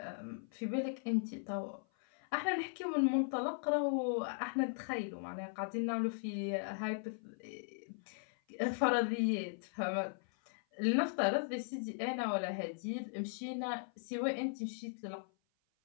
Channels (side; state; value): right; silent; 52 dB below the other